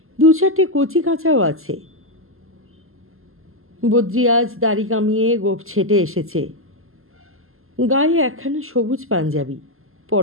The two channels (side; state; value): left; late; 0.62 ms